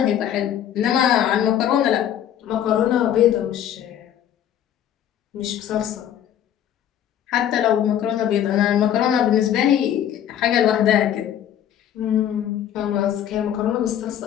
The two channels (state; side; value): quieter; right; 10.3 dB